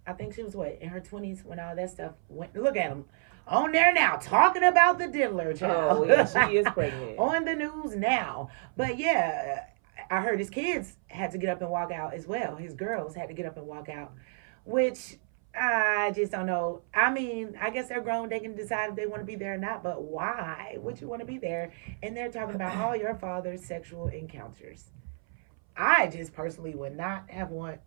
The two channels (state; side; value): silent; left; 58 dB below the other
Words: I think she was in her 20s when all that stuff went. Look at them on there now talking about the diddler child. Oh, yeah, she is pregnant. On the news now. But yeah, I heard his kids had to get up and walk out as well. His girls had to get up and walk out, which I just don't know. I mean, I guess they're grown. They can decide if they want to be there or not. But why would you want to be there? And they're talking about all your father's sexual encounters. I just personally would not have want